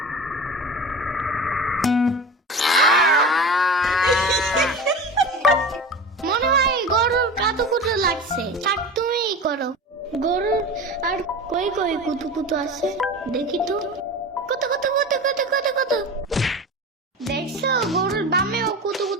মনে হয় গরুর কাতুকুতু লাগছে, থাক তুমিই করো। গরুর আর কই কই কুতুকুতু আছে দেখি তো। কত কত কত কত কত কত, দেখছো গরুর বামেও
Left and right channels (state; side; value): normal; both; correlation 0.32